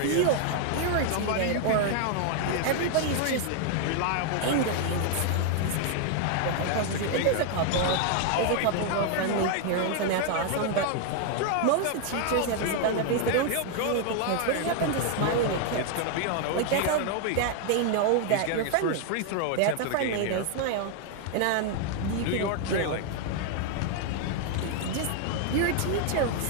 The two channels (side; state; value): both; different; correlation 0.00